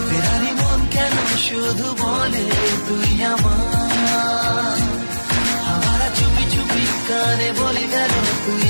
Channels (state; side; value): inverted; both; correlation -1.00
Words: ফেরারি মন কেন শুধু বলে তুই আমার। আবার চুপি চুপি কানে বলে গেল তুই